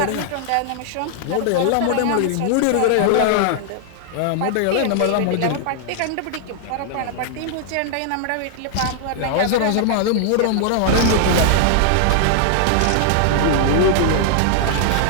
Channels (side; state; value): both; different; correlation 0.00